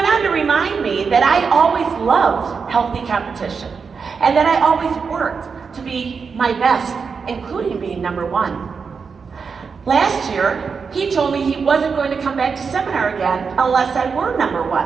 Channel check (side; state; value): left; quieter; 5.5 dB